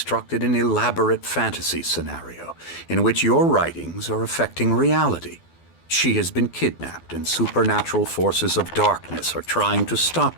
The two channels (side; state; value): right; late; 12 ms